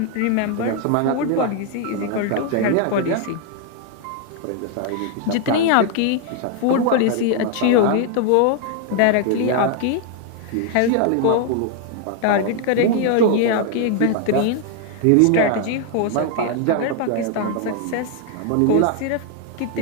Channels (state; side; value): different; both; correlation 0.00